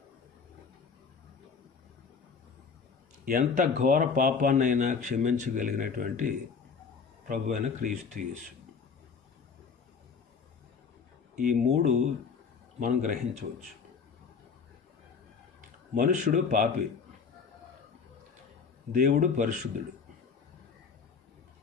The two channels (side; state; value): right; quieter; 5.6 dB